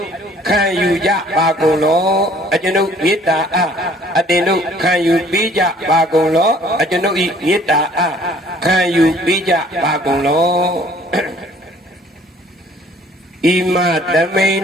ခံယူကြပါကုန်လောအကျွန်ုပ်မေတ္တာအားအတင်တို့ခံယူပေးကြပါကုန်လောအကျွန်ုပ်ဤမေတ္တာအားခံယူပေးကြပါကုန်လောဣမတမိန်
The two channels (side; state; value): both; normal; correlation 0.56